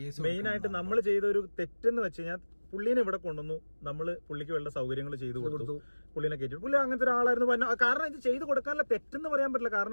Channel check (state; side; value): inverted; both; correlation -1.00